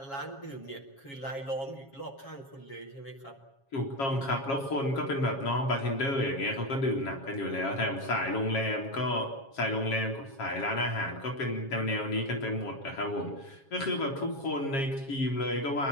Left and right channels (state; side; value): late; right; 7.3 ms